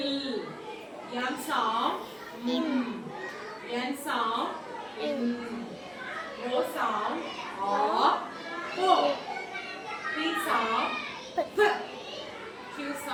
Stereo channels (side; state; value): both; identical; correlation 1.00